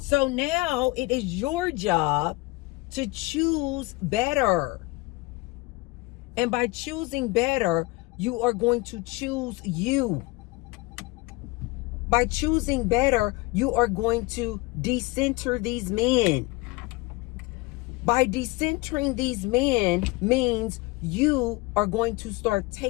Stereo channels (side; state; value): right; quieter; 22.6 dB